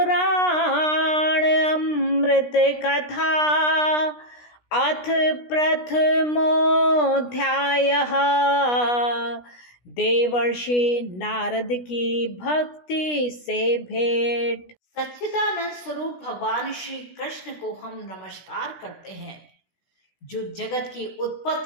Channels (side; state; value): right; late; 16 ms